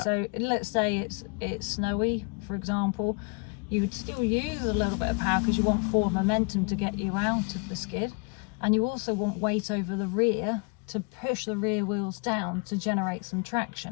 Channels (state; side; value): quieter; right; 33.5 dB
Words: So let's say it's snowy, for example, you would still use a little bit of power because you want forward momentum to get you out of the skid, and you also want weight over the rear to push the rear wheels down to generate some